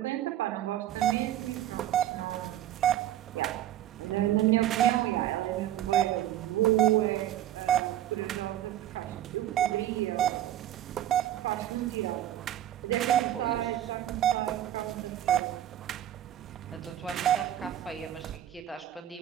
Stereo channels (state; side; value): quieter; left; 12.3 dB